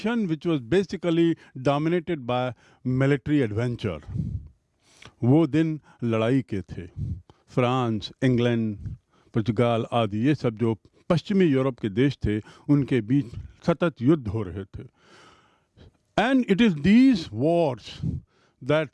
which was basically dominated by military adventure. वो दिन लड़ाई के थे. France, England, पुर्तगाल आदि ये सब जो पश्चिमी यूरोप के देश थे, उनके बीच सतत युद्ध हो रहे थे. And it is these wars that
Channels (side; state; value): both; identical; correlation 1.00